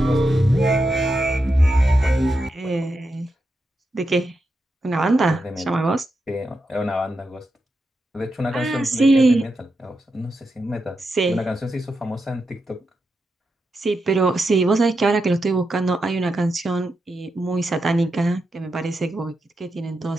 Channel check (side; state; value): both; normal; correlation 0.87